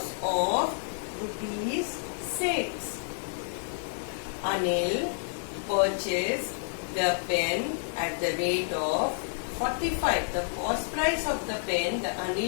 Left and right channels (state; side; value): silent; right; digital silence